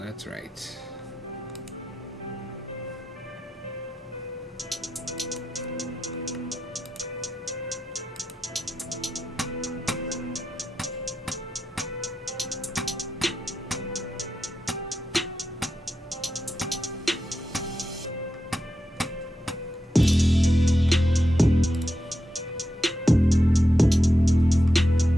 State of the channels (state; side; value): normal; both; correlation 0.88